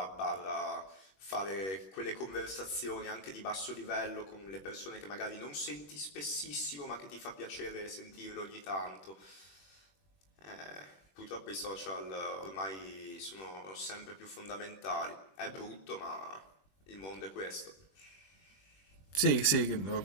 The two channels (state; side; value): late; right; 21 ms